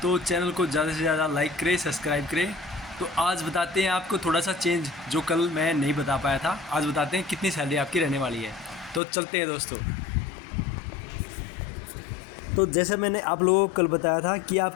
तो चैनल को ज़्यादा से ज़्यादा लाइक करें, सब्सक्राइब करें। तो आज बताते हैं आपको थोड़ा सा चेंज जो कल मैं नहीं बता पाया था। आज बताते हैं कितनी सैलरी आपकी रहने वाली है। तो चलते हैं दोस्तों। तो जैसे मैंने आप लोगों को कल बताया था कि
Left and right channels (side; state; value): right; drops out; at 9.0 s